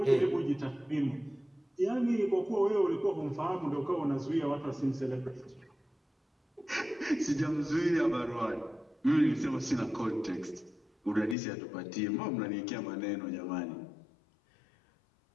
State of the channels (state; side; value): drops out; right; at 11.4 s